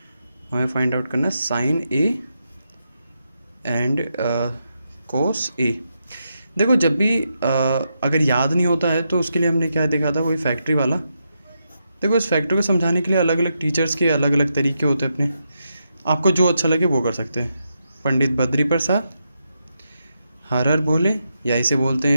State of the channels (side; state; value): both; inverted; correlation -0.84